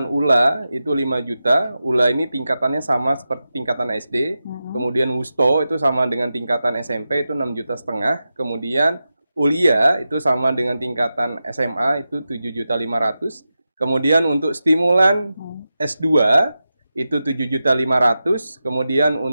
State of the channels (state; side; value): inverted; both; correlation -0.91